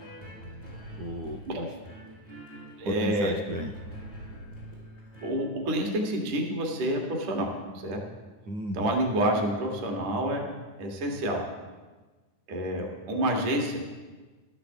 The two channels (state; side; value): late; left; 10 ms